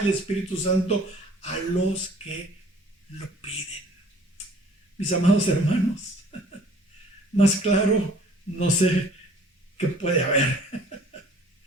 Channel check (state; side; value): normal; both; correlation 0.53